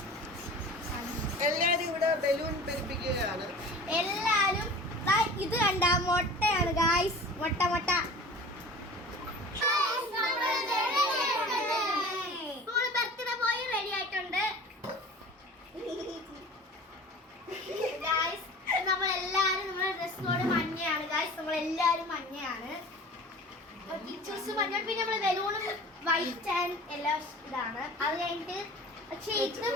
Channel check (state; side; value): normal; both; correlation 0.41